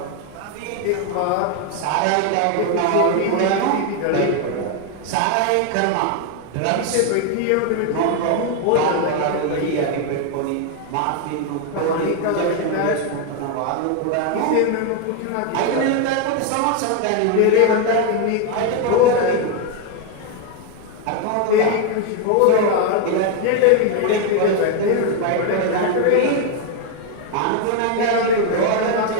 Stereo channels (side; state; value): both; different; correlation 0.01